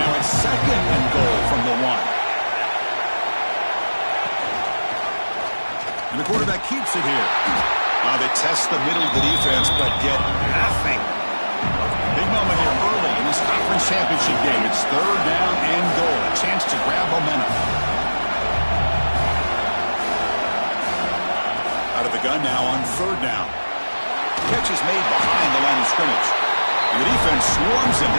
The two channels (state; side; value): inverted; both; correlation -1.00